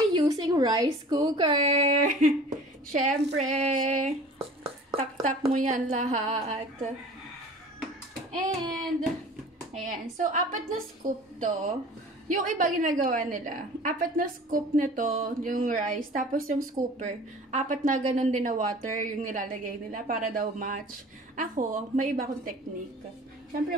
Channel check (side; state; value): both; normal; correlation 0.44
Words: using rice cooker. Syempre. Tak-tak mo yan lahat. And, ayan. So, 4 na scoop to. Yung iba ginagawa nila. 4 na scoop nito, yung rice. Tapos yung scooper. 4 na ganun din na water yung nilalagay nila para daw match. Ako, may iba akong technique. Siyempre,